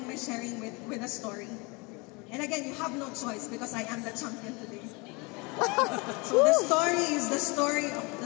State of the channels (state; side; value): quieter; right; 28.3 dB